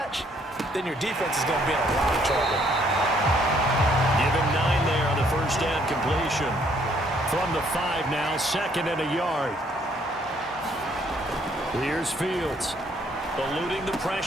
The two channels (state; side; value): normal; both; correlation 0.66